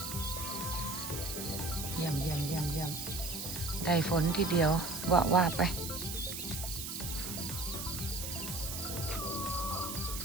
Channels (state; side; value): noise; right; hiss, 6 dB below the sound